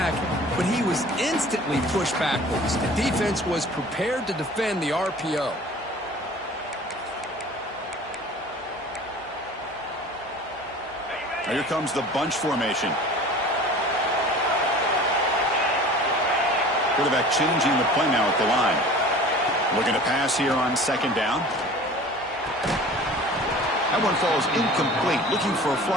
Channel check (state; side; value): normal; both; correlation 0.43